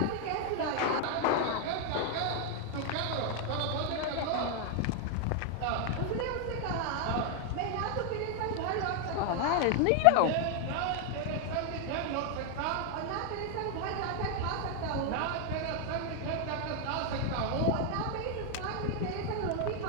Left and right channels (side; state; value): both; different; correlation 0.00